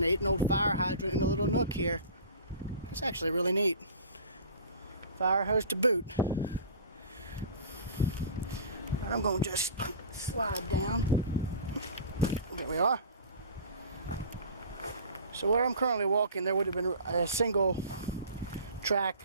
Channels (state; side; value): inverted; both; correlation -0.39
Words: An old fire hydrant in a little nook here. That's actually really neat. Fire hose to boot. I'm going to just slide down. There we are. So where I'm currently walking, there would have been a single track